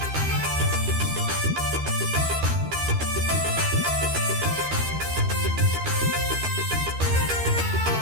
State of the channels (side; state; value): left; late; 13 ms